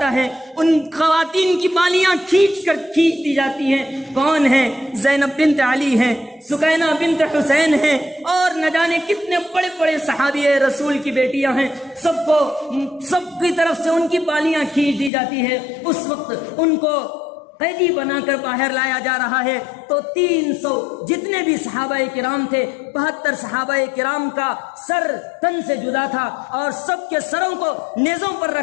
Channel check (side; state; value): right; drops out; at 15.1 s